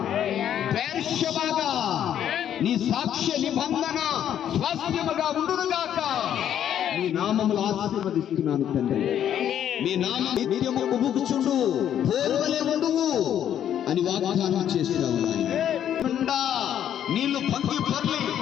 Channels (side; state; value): right; quieter; 10.1 dB